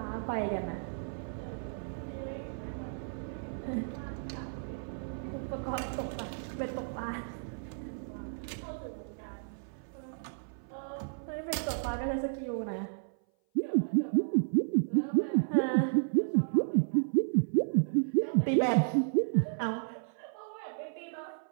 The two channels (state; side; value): silent; left; 56 dB below the other